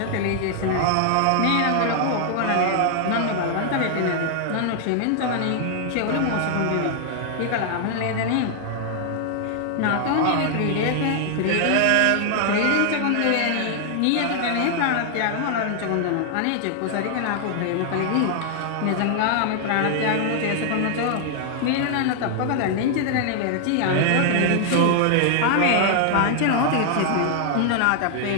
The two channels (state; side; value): different; both; correlation 0.00